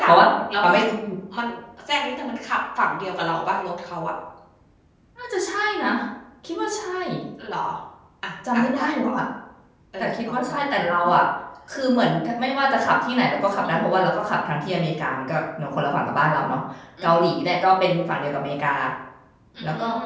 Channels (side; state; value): both; identical; correlation 1.00